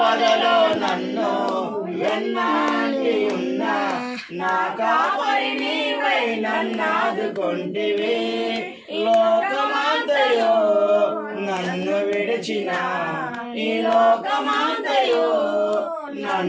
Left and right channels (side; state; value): both; identical; correlation 1.00